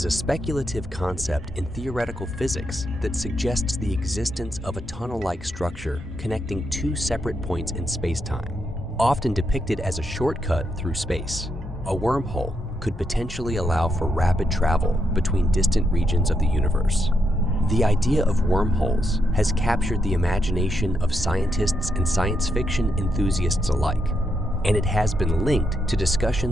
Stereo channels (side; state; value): both; normal; correlation 0.80